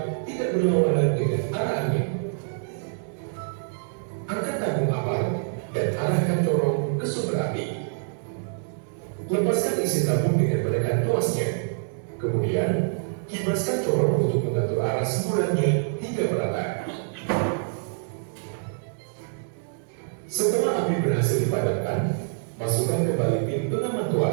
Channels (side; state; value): left; silent; digital silence